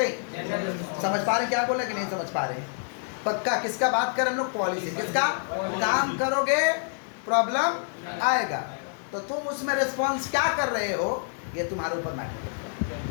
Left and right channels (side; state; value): right; silent; 60 dB below the other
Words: हैं? समझ पा रहे क्या बोले कि नहीं समझ पा रहे? पक्का किसका बात करें हम लोग? पॉलिसी। किसका? काम करोगे प्रॉब्लम आएगा, तो तुम उसमें रिस्पॉन्स क्या कर रहे हो ये तुम्हारे ऊपर मैटर करता